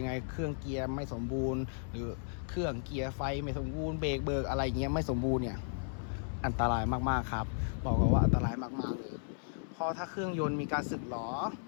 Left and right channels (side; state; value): right; silent; 55 dB below the other